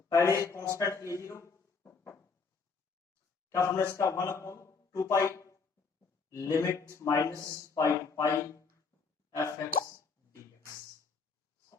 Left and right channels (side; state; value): right; quieter; 4.9 dB